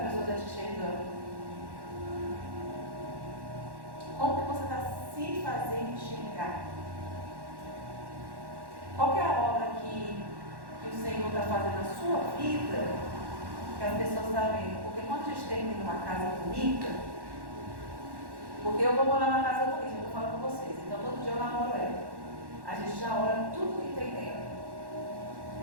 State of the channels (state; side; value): late; left; 1.1 ms